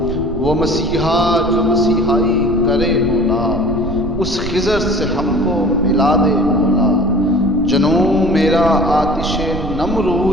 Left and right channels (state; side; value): noise; right; rumble, 8 dB below the sound